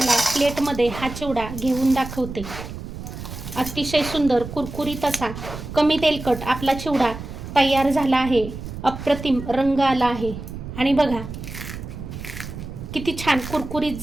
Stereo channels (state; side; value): noise; right; rumble, 10 dB below the sound